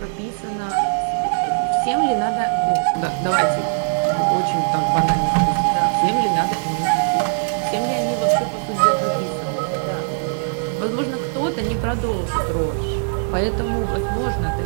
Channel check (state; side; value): silent; left; digital silence